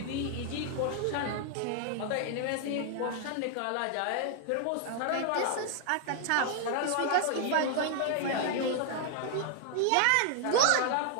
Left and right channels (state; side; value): different; both; correlation 0.00